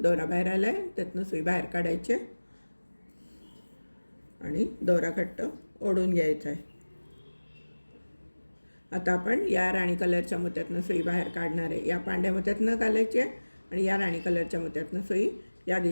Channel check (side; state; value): both; inverted; correlation -1.00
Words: दोरा बाहेर आला आहे त्यातनं सुई बाहेर काढायचे आणि दोरा घट्ट ओढून घ्यायचा आहे। आता आपण या राणी कलरच्या मोत्यातनं सुई बाहेर काढणार आहे। या पांढऱ्या मोत्यातनं घालायची आणि या राणी कलरच्या मोत्यातनं सुई या